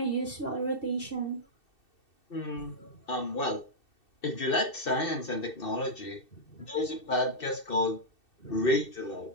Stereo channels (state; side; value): late; right; 2.6 ms